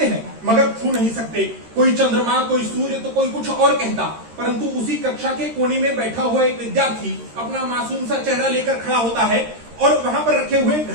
हैं मगर छू नहीं सकते, कोई चंद्रमा, कोई सूर्य, तो कोई कुछ और कहता। परंतु उसी कक्षा के कोने में बैठा हुआ एक विद्यार्थी अपना मासूम सा चेहरा लेकर खड़ा होता है और वहां पर रखे हुए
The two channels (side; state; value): left; late; 13 ms